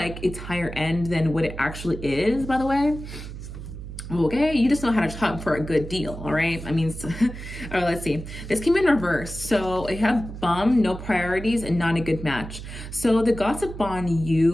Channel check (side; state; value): right; noise; hum, 10 dB below the sound